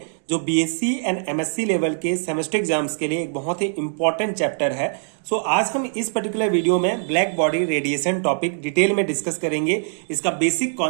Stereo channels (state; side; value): silent; left; digital silence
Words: जो बीएससी एंड एमएससी लेवल के सेमेस्टर एग्जाम्स के लिए एक बहुत ही इंपॉर्टेंट चैप्टर है। सो आज हम इस पर्टिकुलर वीडियो में black body radiation topic detail में डिस्कस करेंगे। इसका बेसिक